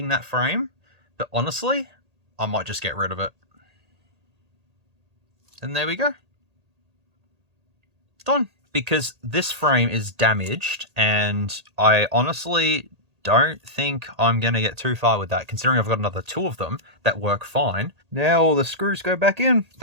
that frame, but honestly, I might just get rid of it. And there we go. Done. Because this frame is damaged, and I honestly don't think I'm going to get too far with that, considering I've got another two of them that work fine. Now all the screws go back in.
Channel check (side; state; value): left; late; 1.8 ms